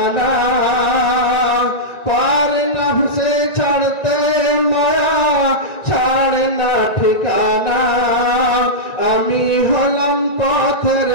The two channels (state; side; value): late; right; 1.9 ms